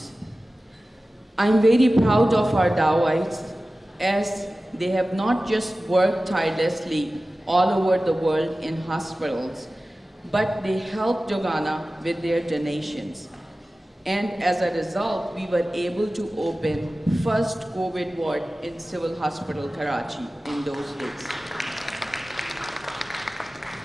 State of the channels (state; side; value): normal; both; correlation 0.96